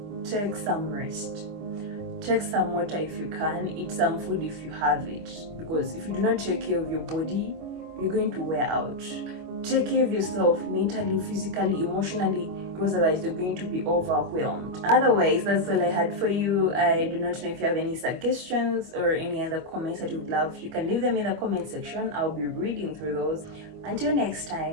take some rest. Take some water if you can, eat some food if you have it. Because if you do not take care of your body, you're going to wear out. Take care of yourself mentally, physically, emotionally, because otherwise you're going to be overwhelmed. Otherwise, that's all I had for you. I do not know if you have any suggestions or any other comments that you would love. You can leave them in the comment section. I'll be reading through those. Until next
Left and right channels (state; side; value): late; left; 25 ms